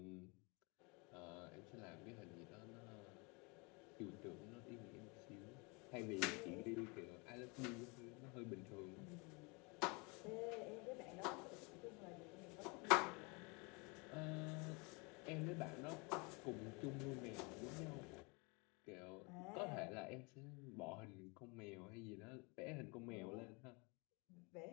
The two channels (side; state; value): right; quieter; 29.8 dB